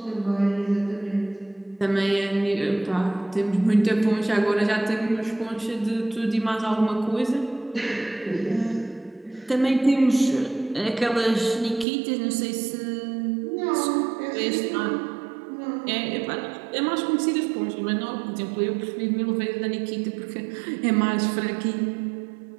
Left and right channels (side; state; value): left; drops out; at 11.9 s